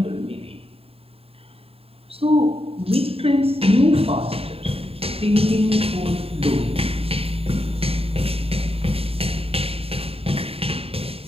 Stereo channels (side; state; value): left; late; 0.28 ms